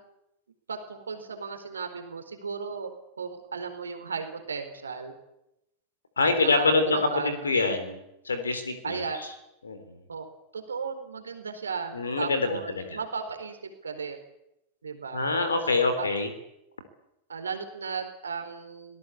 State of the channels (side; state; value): both; inverted; correlation -0.64